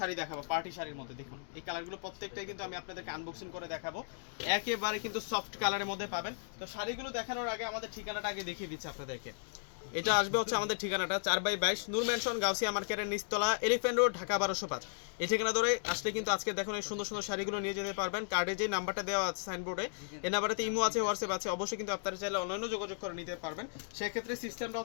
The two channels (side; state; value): right; silent; digital silence